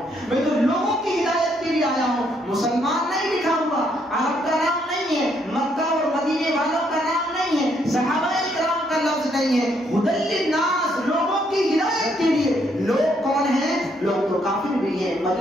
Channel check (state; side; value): normal; both; correlation 0.72